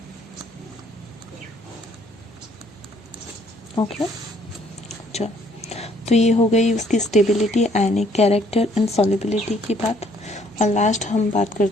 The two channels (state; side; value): normal; both; correlation 0.64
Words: Okay, चलो, तो ये हो गई उसकी stability, ionic character and solubility की बात। और लास्ट हम बात